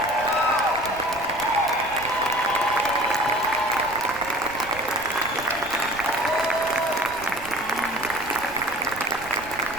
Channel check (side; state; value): right; noise; rumble, 18 dB below the sound